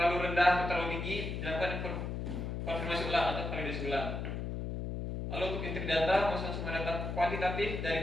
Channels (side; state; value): left; noise; hum, 4 dB below the sound